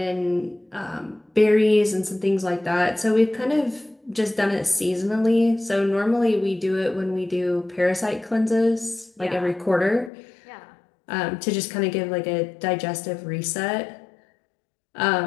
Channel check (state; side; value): drops out; right; at 10.1 s